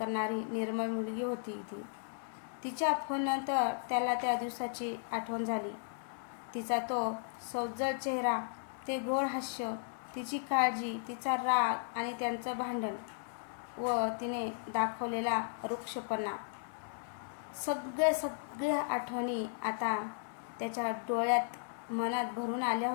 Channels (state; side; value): silent; right; digital silence